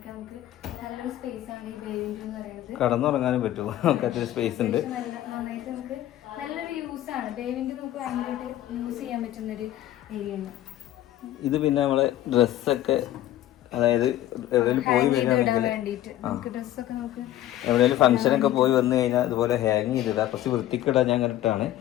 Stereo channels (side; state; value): right; quieter; 13.4 dB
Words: നമുക്ക് നല്ലൊരു സ്പേസ് ആണ് ഈ ബേ വിൻഡോ എന്ന് പറയുന്നത്. കടന്നുറങ്ങാനും പറ്റുമോ? സ്പേസ് ഉണ്ട്. നന്നായിട്ട് നമുക്ക് നല്ലൊരു യൂസ് ആണ് ബേ വിൻഡോ. നമുക്ക് ഭയങ്കരമായിട്ട് യൂസ് ചെയ്യാൻ പറ്റുന്നൊരു ഏരിയ ആണ് ഇത്. പിന്നെ നമ്മളെ ഡ്രസ്സൊക്കെ, അതായത് എവിടെയെങ്കിലും പോയി വരികയാണെങ്കിൽ എവിടെയെങ്കിലും ഫംഗ്ഷനൊക്കെ പോയി വന്നു കഴിഞ്ഞാൽ ഇതുപോലെ ഹാങ് ചെയ്തിടാ, കുറച്ച് വൃത്തിക്കിടാൻ ഞാൻ കണ്ടിട്ടാണ്.